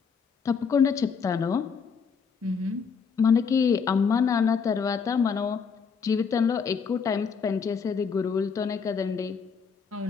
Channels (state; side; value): quieter; right; 5.9 dB